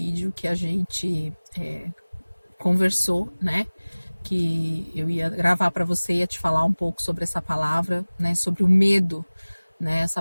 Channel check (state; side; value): inverted; both; correlation -1.00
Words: que a gente conversou, né? Que eu ia gravar para você, ia te falar um pouco sobre essa palavra, né? Sobre o medo, né?